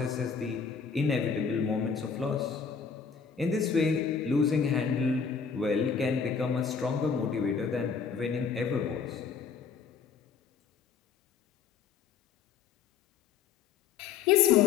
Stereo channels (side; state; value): right; quieter; 6.2 dB